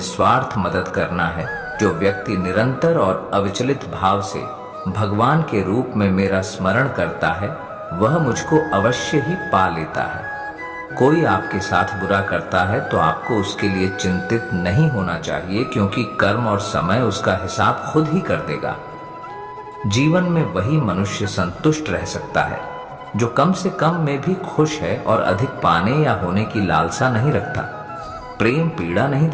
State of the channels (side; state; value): both; identical; correlation 1.00